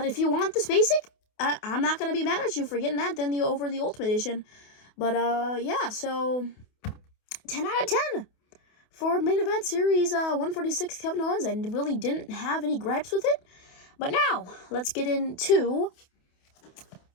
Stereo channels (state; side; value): late; right; 28 ms